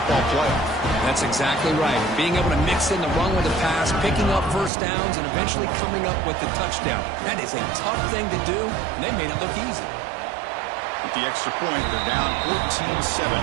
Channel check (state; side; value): drops out; left; at 4.7 s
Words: playoff. That's exactly right. Being able to mix in the run with the pass, picking up 1st downs, and eventually coming up with the touchdown. That is a tough thing to do, and they made it look easy. With the extra point, they're down 14-7